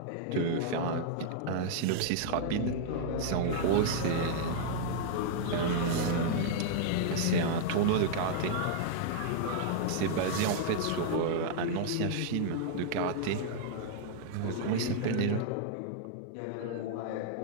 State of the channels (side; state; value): both; different; correlation -0.01